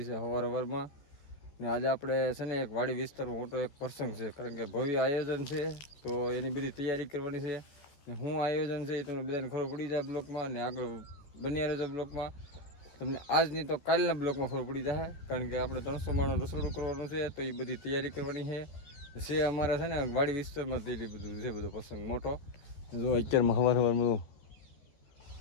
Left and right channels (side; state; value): right; late; 14 ms